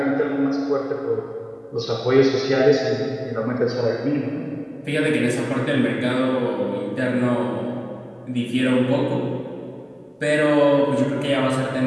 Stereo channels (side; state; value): both; identical; correlation 1.00